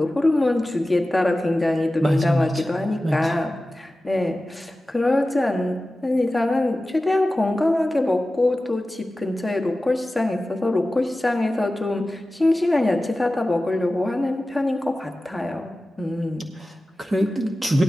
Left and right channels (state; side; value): normal; both; correlation 0.95